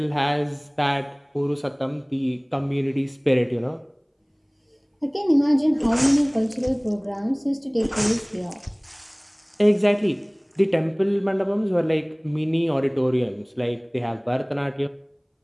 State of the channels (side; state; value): both; identical; correlation 1.00